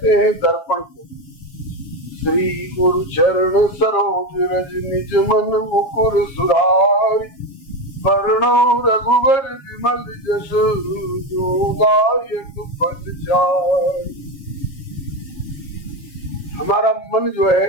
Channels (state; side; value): late; right; 7.1 ms